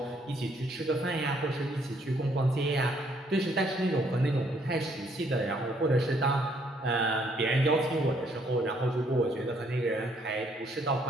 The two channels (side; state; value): both; normal; correlation 0.67